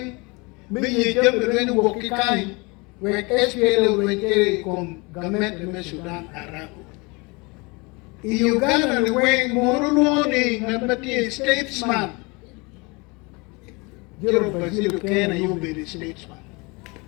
me yejambe wen wokikai when SPLA went con government of Sudan Arabu. In Uganda, the way Moroni, Nabati, statesman. Jero Bazilio Kena, you be the statesman.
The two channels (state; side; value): quieter; right; 27.4 dB